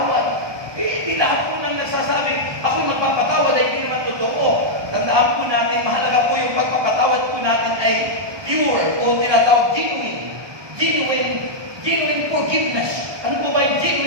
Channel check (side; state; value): left; late; 1.2 ms